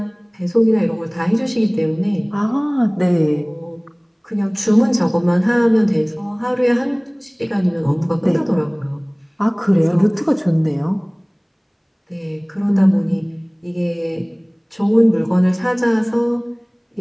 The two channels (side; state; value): both; identical; correlation 1.00